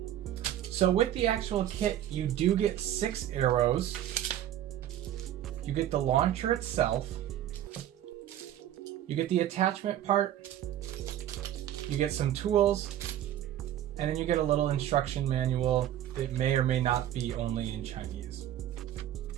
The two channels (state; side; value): quieter; left; 11.8 dB